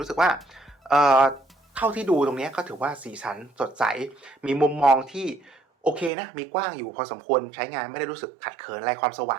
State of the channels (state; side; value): drops out; left; at 6.1 s